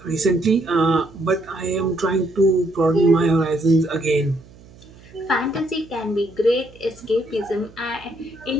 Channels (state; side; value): noise; right; hum, 23 dB below the sound